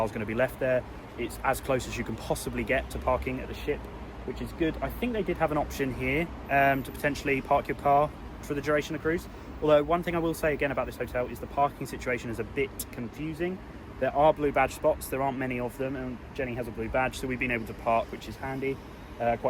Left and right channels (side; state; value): both; identical; correlation 1.00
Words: going to be left there. It's as close as you can possibly get to parking at the ship, which is good. I think they did have an option here to potentially park your car for the duration of the cruise. Although one thing I will say again about this hotel is the parking situation is a bit confusing. There are blue badge spots, there aren't many of them, and Jenny has a blue badge, so we've been able to park, which is handy,